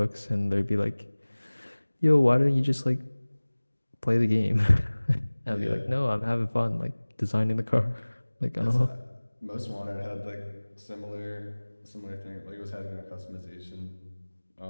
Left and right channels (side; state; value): both; inverted; correlation -1.00